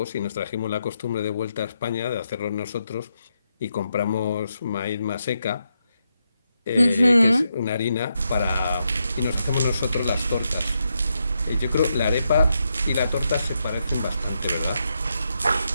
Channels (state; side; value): inverted; both; correlation -0.83